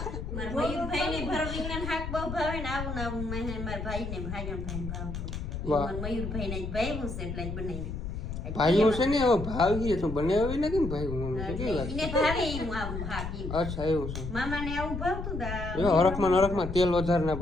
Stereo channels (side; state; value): left; noise; rumble, 5 dB below the sound